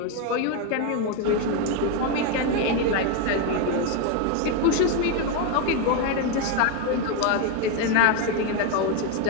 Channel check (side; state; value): both; different; correlation 0.02